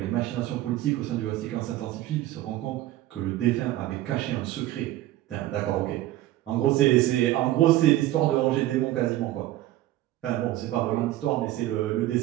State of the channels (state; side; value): quieter; left; 15.1 dB